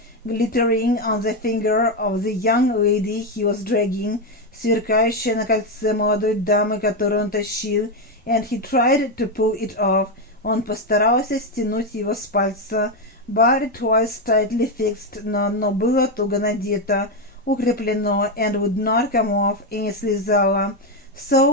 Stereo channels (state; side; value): normal; both; correlation 0.08